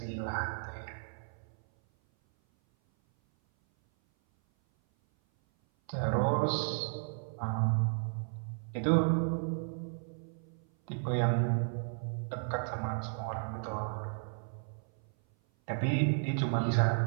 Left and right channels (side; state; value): left; silent; 55 dB below the other